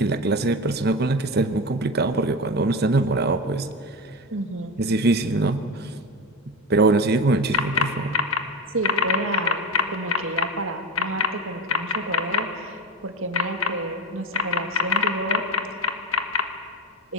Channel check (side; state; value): both; normal; correlation 0.22